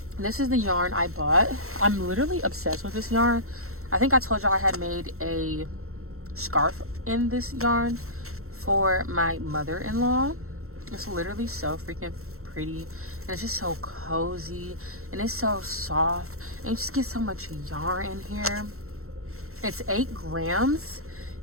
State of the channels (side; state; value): left; late; 0.63 ms